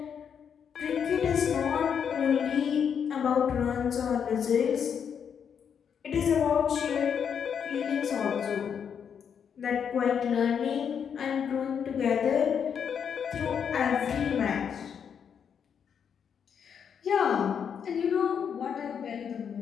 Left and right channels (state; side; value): quieter; right; 7.5 dB